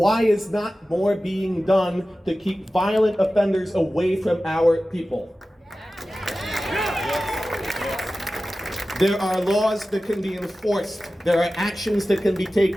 is not more being done to keep violent offenders away from our people? There are laws that can be enforced. There are actions that can be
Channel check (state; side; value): normal; both; correlation 0.95